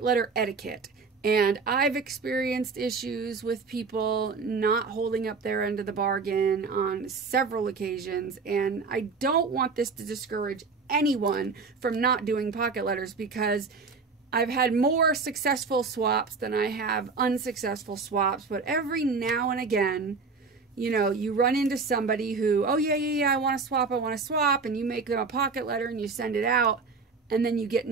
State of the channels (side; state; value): left; quieter; 4.6 dB